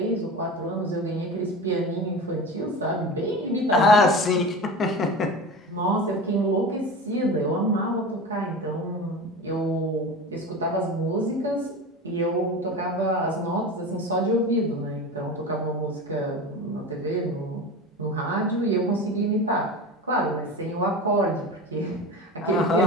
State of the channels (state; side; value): normal; both; correlation 0.30